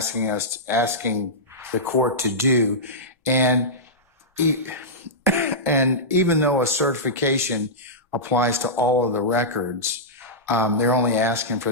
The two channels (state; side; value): normal; both; correlation -0.13